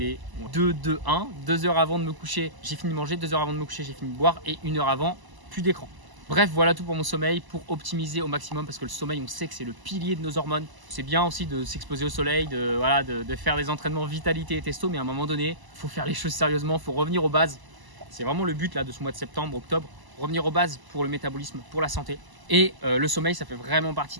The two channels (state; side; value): late; left; 1.0 ms